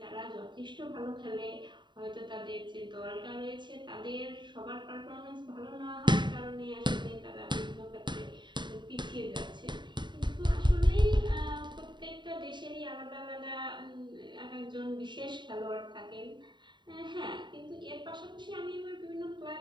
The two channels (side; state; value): left; late; 0.22 ms